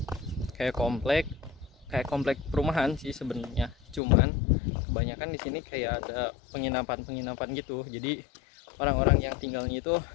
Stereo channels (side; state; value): right; drops out; at 4.0 s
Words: kayak komplek perumahan sih sebenarnya, cuman kebanyakan di sini kayak ada penginapan gitu. Jadi orang-orang yang tinggalnya itu